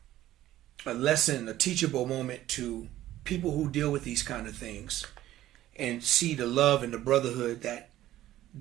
lesson, a teachable moment to people who deal with these kind of things, and see the love and the brotherhood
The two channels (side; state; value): left; quieter; 14.1 dB